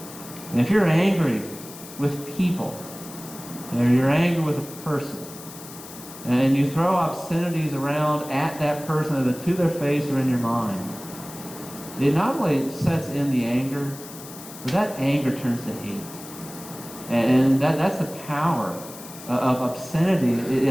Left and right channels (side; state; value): left; noise; hiss, 15 dB below the sound